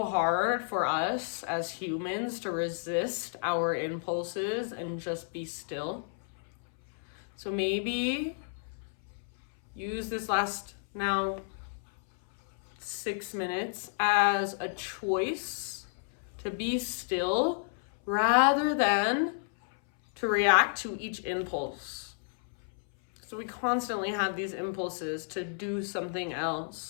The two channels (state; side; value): silent; right; 57 dB below the other